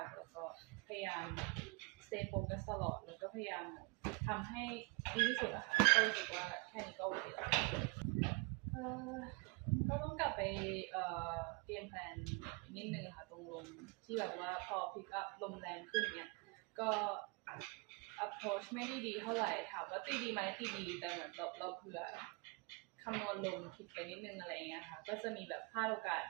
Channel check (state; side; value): quieter; left; 27.6 dB